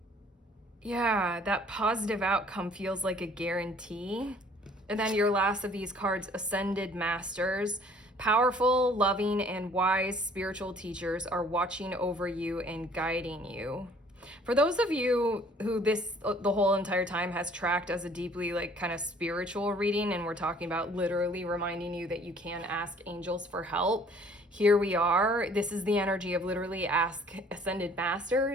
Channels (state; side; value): normal; both; correlation 0.56